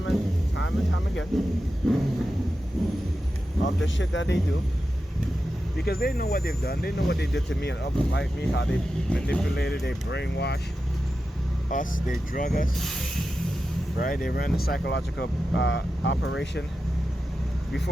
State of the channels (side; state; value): both; normal; correlation 0.91